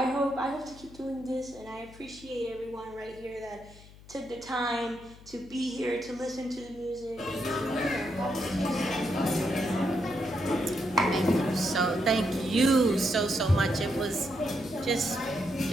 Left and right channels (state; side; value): noise; left; hum, 21 dB below the sound